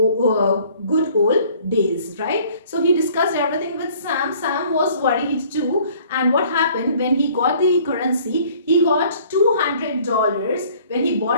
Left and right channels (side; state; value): both; inverted; correlation -0.55